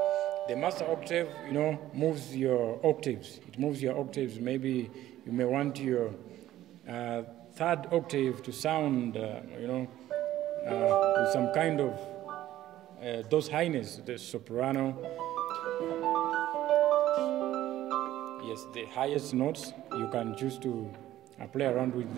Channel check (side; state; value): left; quieter; 13.8 dB